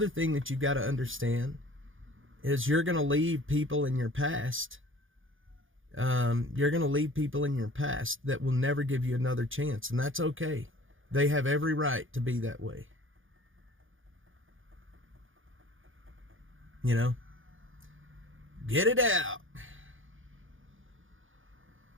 thing that you've got to understand is you're going to leave people in your past. You're going to leave people in your past that will never give you another chance, and that's okay. They have every right to be that way. Get it out.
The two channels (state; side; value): late; left; 0.58 ms